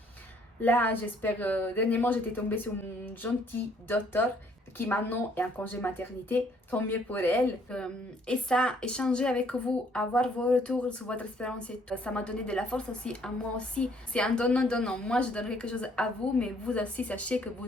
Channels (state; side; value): normal; both; correlation 0.64